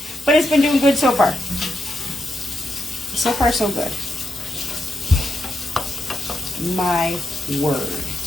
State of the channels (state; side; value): normal; both; correlation 0.84